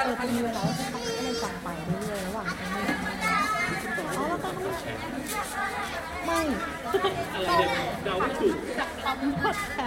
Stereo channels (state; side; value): identical; both; correlation 1.00